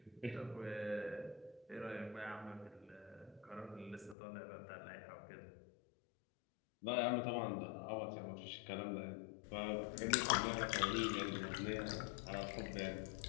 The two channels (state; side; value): drops out; right; at 4.2 s